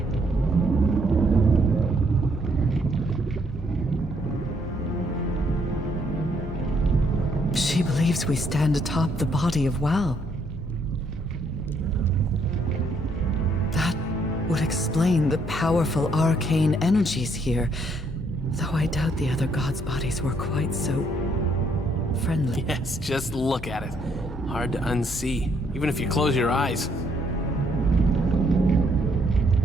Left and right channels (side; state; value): left; noise; hum, 13 dB below the sound